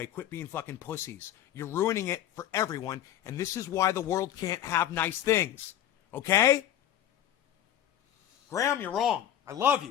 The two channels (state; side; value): quieter; right; 11.4 dB